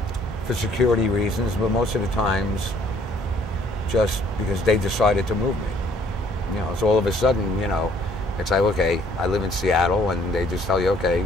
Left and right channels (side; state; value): both; normal; correlation 0.61